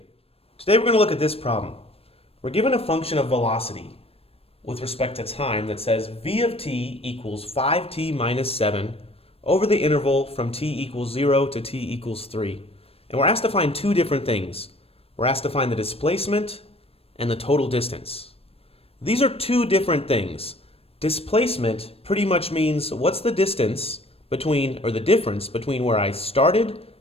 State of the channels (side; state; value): right; late; 0.28 ms